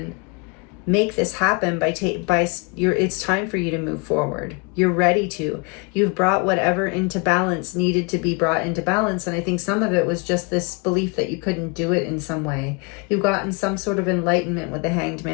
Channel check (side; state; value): right; quieter; 31.2 dB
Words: make this happen it's time for you to move forward. You're ready to. You've brought whatever into balance needed to be brought into balance. And I think some of it was just this belief that you couldn't do it in some way. You've gotten some sort of enlightenment with the Hanged